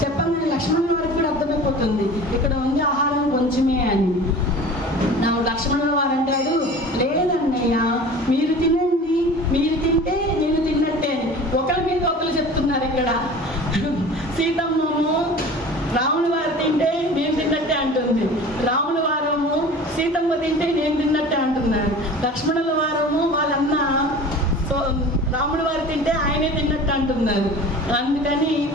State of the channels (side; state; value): both; normal; correlation 0.40